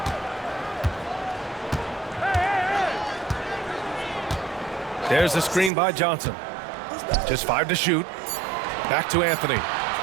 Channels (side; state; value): left; drops out; at 5.7 s